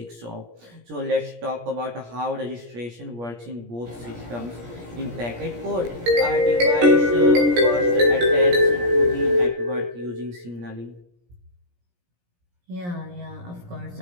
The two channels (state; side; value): late; left; 17 ms